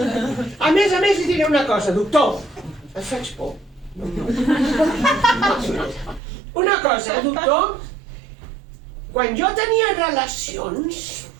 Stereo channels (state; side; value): drops out; left; at 6.2 s